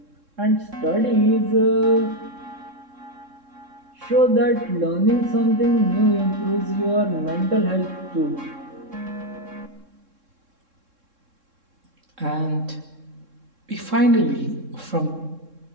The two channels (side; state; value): left; late; 3.7 ms